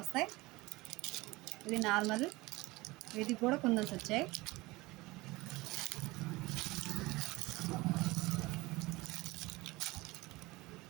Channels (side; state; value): left; quieter; 21.5 dB